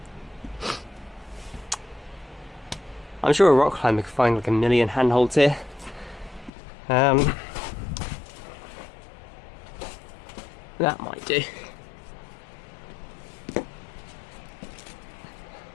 I'm sure a rock climber could find like a million handholds here. That might do.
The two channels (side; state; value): right; drops out; at 6.5 s